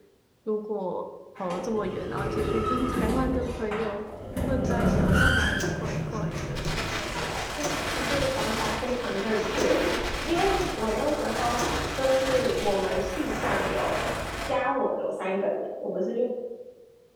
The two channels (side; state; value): both; identical; correlation 1.00